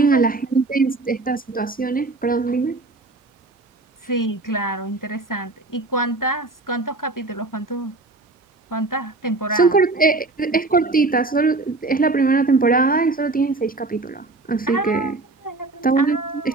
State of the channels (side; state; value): left; quieter; 3.3 dB